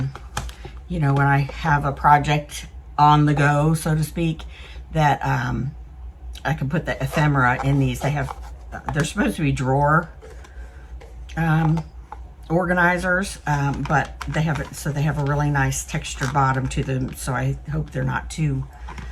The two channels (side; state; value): both; identical; correlation 1.00